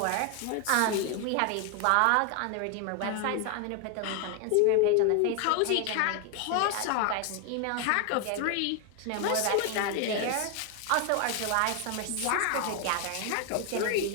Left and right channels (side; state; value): both; different; correlation 0.01